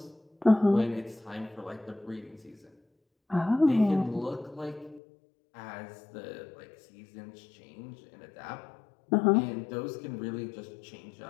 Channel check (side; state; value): right; drops out; at 5.0 s